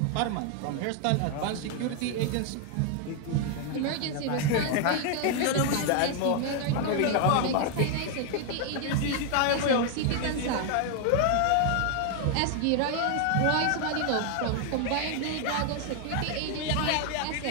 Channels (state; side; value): different; both; correlation 0.00